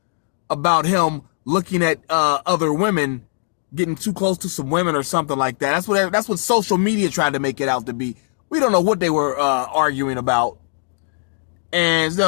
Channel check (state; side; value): silent; right; digital silence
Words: about him looking at other women, getting too close to some women or something like that. That's what social media tried to make it out to be. We don't know what they were arguing about. And